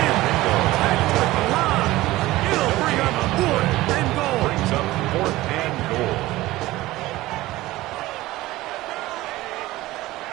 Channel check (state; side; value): quieter; left; 17.7 dB